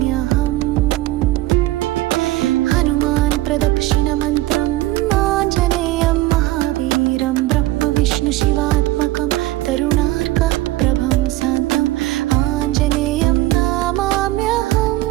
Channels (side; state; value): left; quieter; 17.0 dB